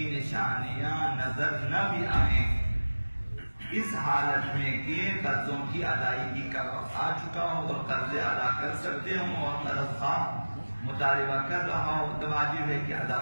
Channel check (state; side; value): inverted; both; correlation -1.00